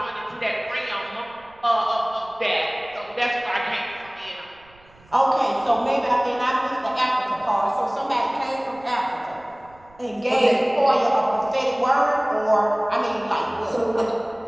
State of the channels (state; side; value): noise; right; rumble, 28 dB below the sound